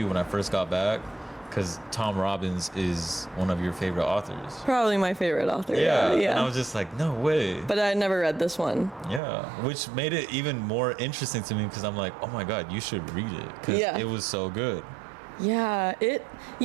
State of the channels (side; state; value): left; drops out; at 9.2 s